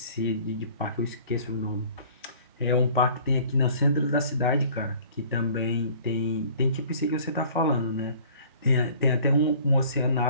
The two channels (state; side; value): inverted; both; correlation -0.51